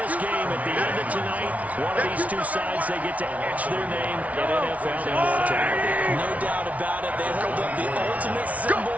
game, at the end of tonight, one of these two sides, they get to etch their name in NFL immortality. No doubt about it. They hold up the ultimate symbol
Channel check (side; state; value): left; late; 0.068 ms